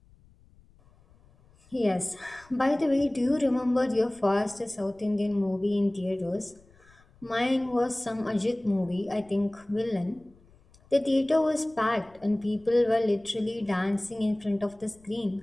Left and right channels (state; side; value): noise; left; rumble, 29 dB below the sound